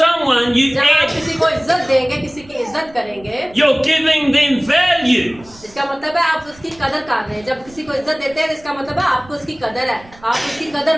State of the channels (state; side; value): noise; right; rumble, 24 dB below the sound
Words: you जब आप add, किसी को इज्जत देंगे, किसी की इज्जत करेंगे, you're giving them value. इसका मतलब है आप उसकी कदर कर रहे हैं। जब किसी को इज्जत देते हैं इसका मतलब है आपको उसकी कदर है, आप उसकी कदर